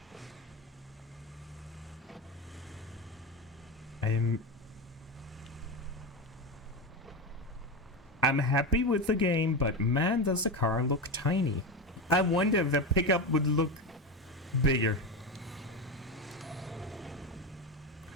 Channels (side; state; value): both; normal; correlation 0.18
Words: I'm happy with the game, but man, does the car look tiny. I wonder if the pickup would look bigger.